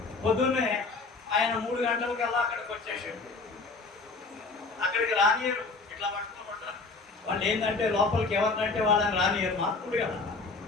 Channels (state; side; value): quieter; right; 3.9 dB